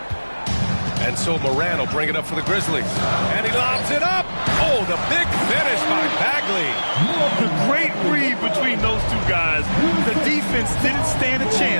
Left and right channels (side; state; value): both; inverted; correlation -1.00